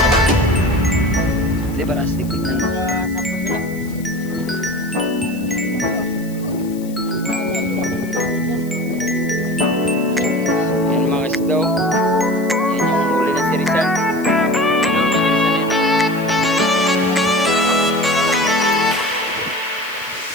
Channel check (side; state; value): left; noise; hiss, 20 dB below the sound